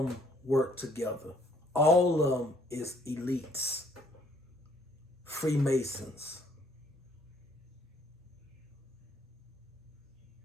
them work together. All of them is elites. Freemasons.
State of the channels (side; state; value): both; normal; correlation 0.63